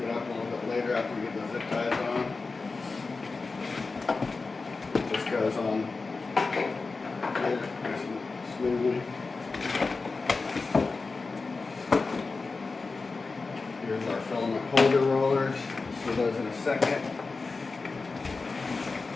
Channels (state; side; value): quieter; right; 4.0 dB